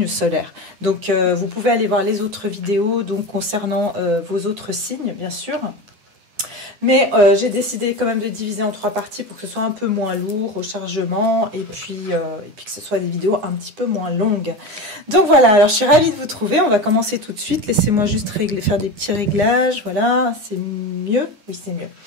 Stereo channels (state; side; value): late; left; 9.7 ms